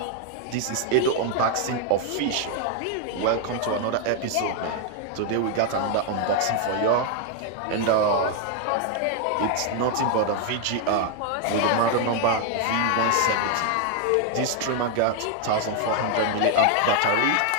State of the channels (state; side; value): different; both; correlation 0.00